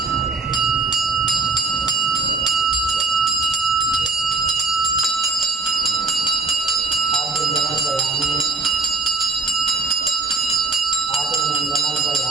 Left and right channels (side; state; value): left; quieter; 4.0 dB